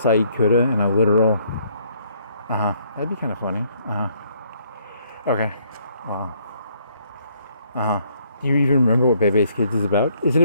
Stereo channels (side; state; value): both; inverted; correlation -0.67